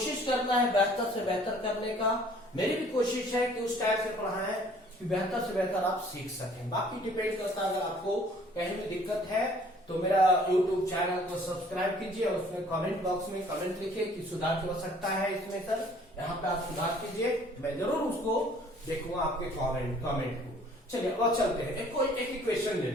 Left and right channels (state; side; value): normal; both; correlation 0.56